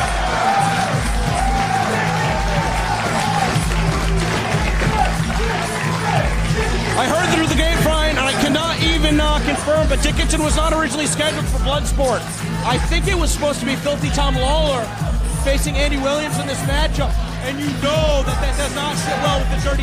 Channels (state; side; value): identical; both; correlation 1.00